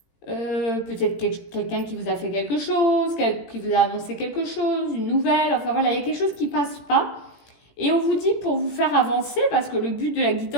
peut-être quelqu'un qui vous a fait quelque chose, qui vous a annoncé quelque chose, une nouvelle, enfin voilà, il y a quelque chose qui ne passe pas. Et on vous dit pour vous faire avancer, parce que le but de la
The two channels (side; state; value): right; late; 17 ms